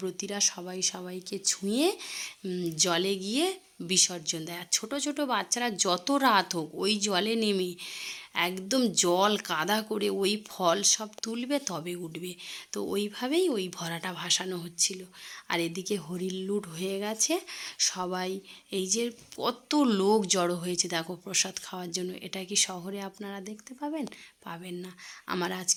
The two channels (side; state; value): both; identical; correlation 1.00